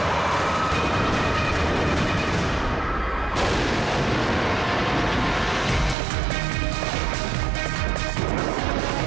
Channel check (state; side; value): drops out; left; at 6.0 s